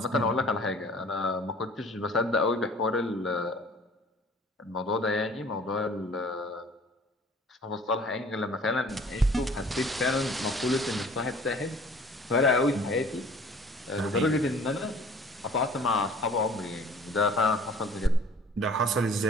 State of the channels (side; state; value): both; normal; correlation 0.50